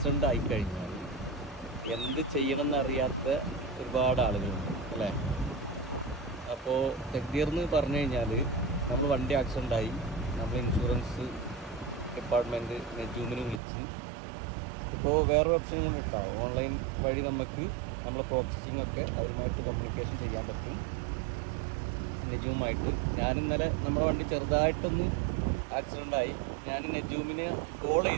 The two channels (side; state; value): left; drops out; at 13.6 s